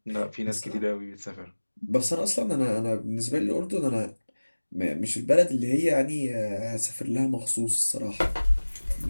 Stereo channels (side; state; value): both; inverted; correlation -1.00